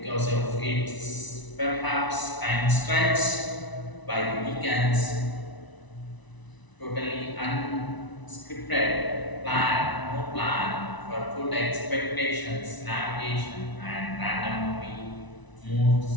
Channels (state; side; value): late; right; 1.0 ms